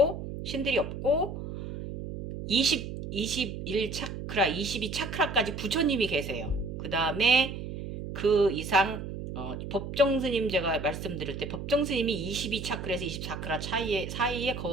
신들이 없고 21차크라, 22차크라까지 부처님이 계세요. 그 다음에 그 이상 법정스님 제가 말씀드릴 때 법정스님이 22차크라에서 24차크라 사이에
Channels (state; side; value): noise; right; hum, 7 dB below the sound